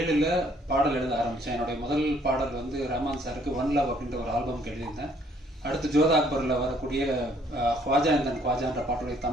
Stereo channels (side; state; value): both; normal; correlation 0.64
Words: பாடல் எழுத ஆரம்பித்தேன். என்னுடைய முதல் பாடல் வந்து ரஹ்மான் சாருக்கு ஒன் லவ் அப்படின்ற ஒரு ஆல்பம்க்கு எழுதியிருந்தேன். அடுத்து ஜோதா அக்பரில் வரக்கூடிய ख्वाजा इंदन ख्वाजाன்ற பாட்டுடைய